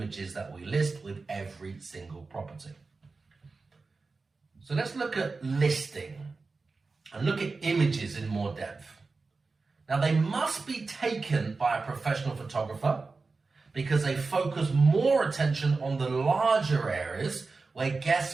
that we list with every single property. So let's look at listing and look at images in more depth. Now, they must be taken by a professional photographer because they focus more attention on the larger areas where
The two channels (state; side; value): quieter; left; 4.0 dB